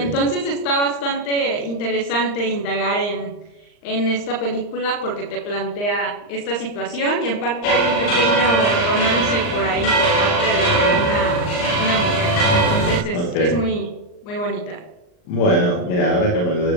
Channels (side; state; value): right; late; 39 ms